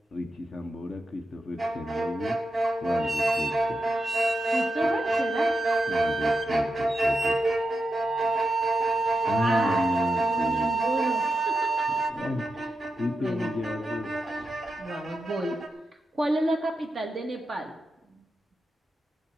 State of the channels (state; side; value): normal; both; correlation 0.88